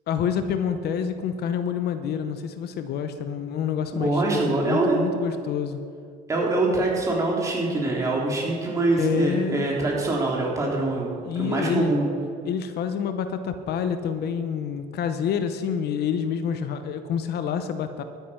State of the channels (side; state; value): both; normal; correlation 0.50